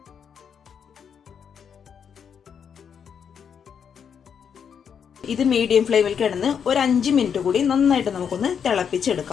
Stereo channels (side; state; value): right; quieter; 7.4 dB